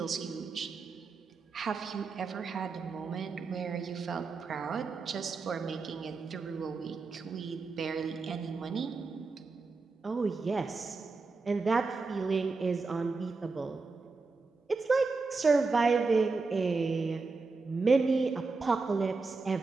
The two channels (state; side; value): quieter; left; 4.1 dB